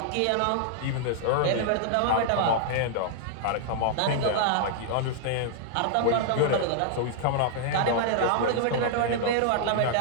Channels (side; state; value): both; different; correlation -0.01